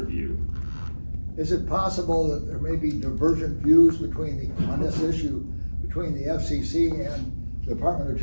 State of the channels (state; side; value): inverted; both; correlation -1.00